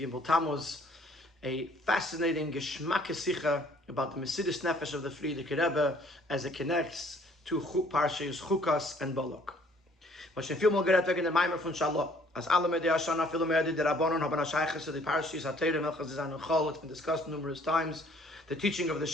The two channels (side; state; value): both; normal; correlation 0.60